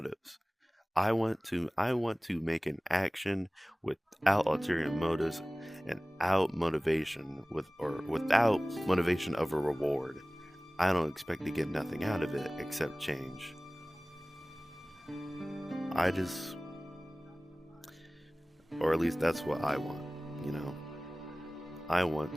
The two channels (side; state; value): both; normal; correlation 0.98